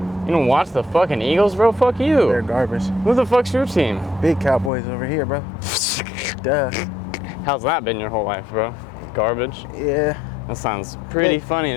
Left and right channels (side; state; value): right; drops out; at 4.7 s